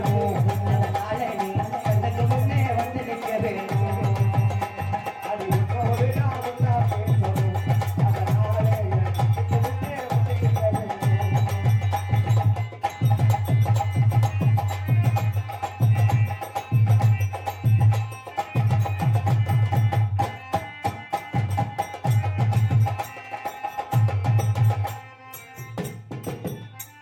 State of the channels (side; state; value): both; identical; correlation 1.00